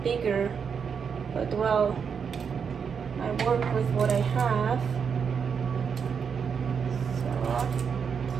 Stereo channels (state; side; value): quieter; left; 6.6 dB